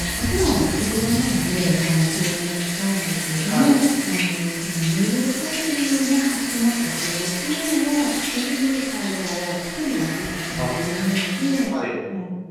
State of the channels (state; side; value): identical; both; correlation 1.00